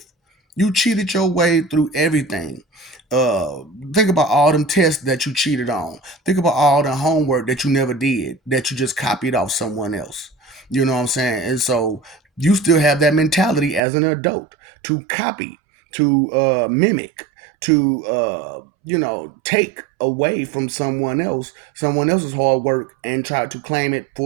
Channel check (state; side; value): drops out; left; at 13.8 s